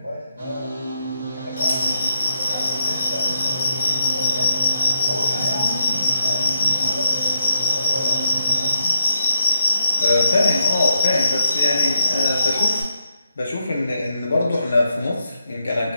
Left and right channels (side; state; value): both; inverted; correlation -0.82